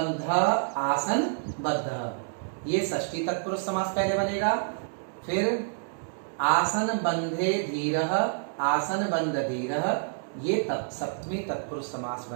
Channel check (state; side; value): silent; left; digital silence